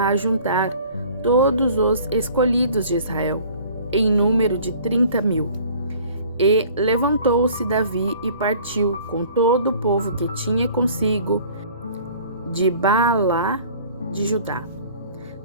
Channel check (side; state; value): both; inverted; correlation -0.50